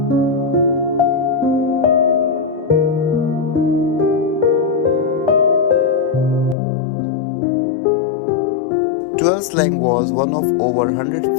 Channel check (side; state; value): right; drops out; at 6.6 s